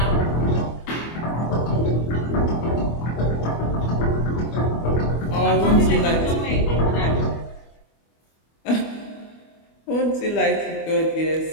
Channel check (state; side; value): late; right; 25 ms